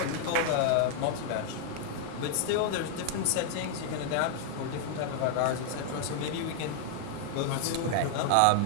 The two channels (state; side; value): different; both; correlation 0.00